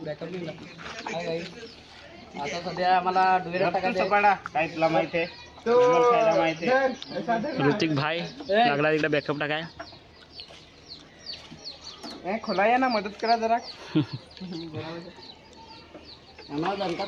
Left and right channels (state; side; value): identical; both; correlation 1.00